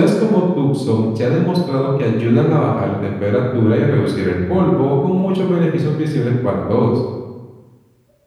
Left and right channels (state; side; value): identical; both; correlation 1.00